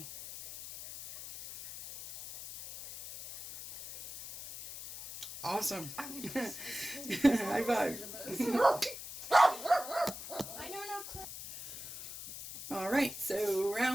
Awesome. High five. I know no clue. All right, so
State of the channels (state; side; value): noise; left; hiss, 11 dB below the sound